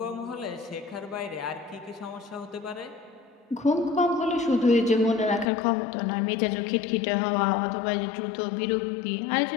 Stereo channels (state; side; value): drops out; right; at 5.5 s